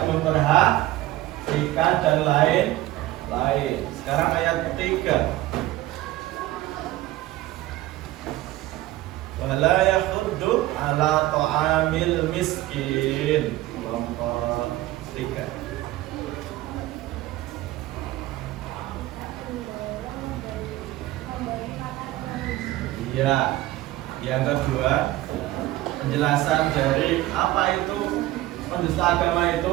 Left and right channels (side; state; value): left; quieter; 16.3 dB